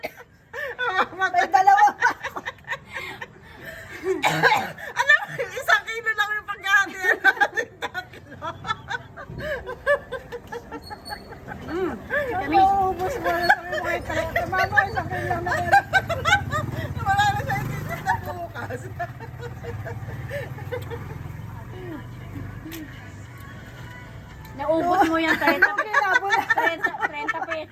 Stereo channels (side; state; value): both; identical; correlation 1.00